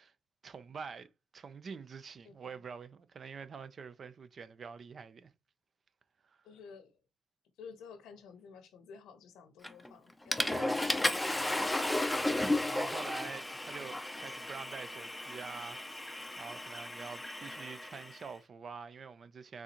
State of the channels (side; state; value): both; normal; correlation 0.95